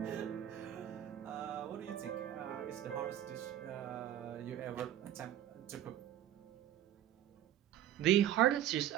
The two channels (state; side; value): quieter; left; 11.8 dB